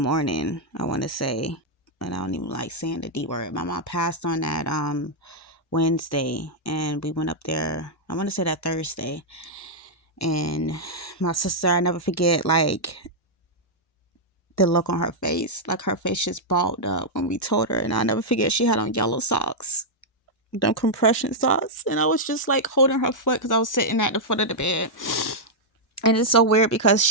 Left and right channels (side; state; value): both; normal; correlation -0.05